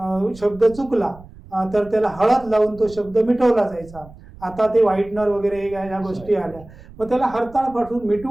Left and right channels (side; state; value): right; noise; rumble, 20 dB below the sound